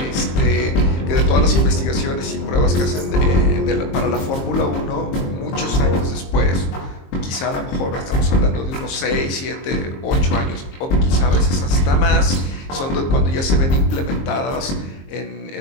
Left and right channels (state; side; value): late; right; 22 ms